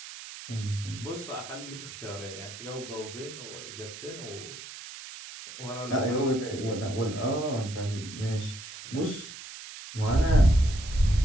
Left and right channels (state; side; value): noise; right; hiss, 13 dB below the sound